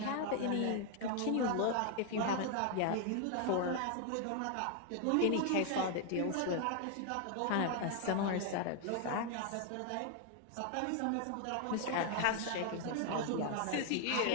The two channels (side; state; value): both; different; correlation 0.00